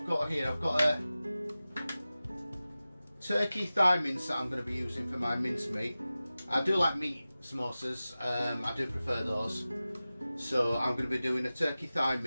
got here. I've got a turkey thigh mince that I'm going to be using for my mince meat. I do like meat samosas, I do prefer those. So I'm going to be doing a turkey thigh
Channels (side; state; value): both; inverted; correlation -0.96